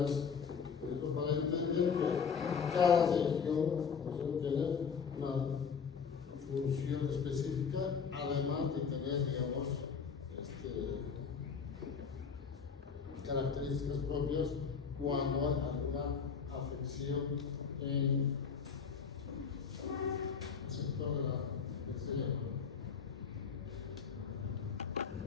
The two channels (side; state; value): right; quieter; 6.2 dB